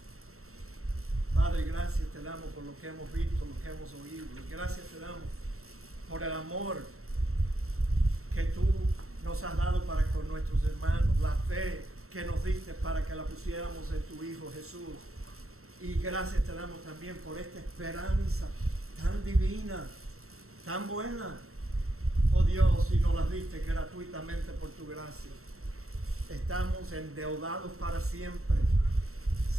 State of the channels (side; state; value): left; late; 0.63 ms